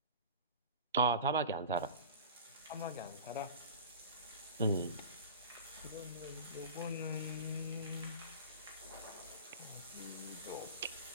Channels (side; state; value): both; inverted; correlation -0.35